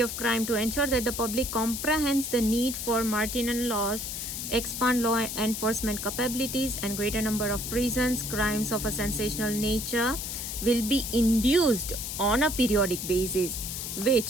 of crime. To ensure that the public comprehends the need for marginal laws, expand law enforcement capabilities, and greater number of prisons, crimes of a sensational nature will be induced on a periodic basis,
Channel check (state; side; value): noise; left; hiss, 5 dB below the sound